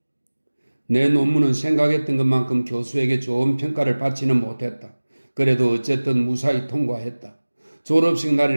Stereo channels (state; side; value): inverted; both; correlation -1.00